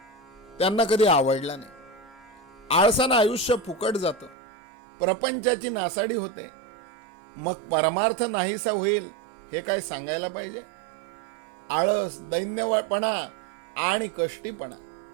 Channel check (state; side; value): drops out; left; at 4.4 s